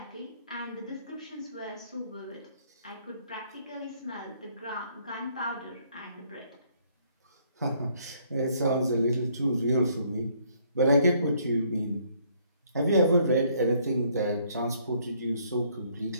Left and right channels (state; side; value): inverted; both; correlation -0.65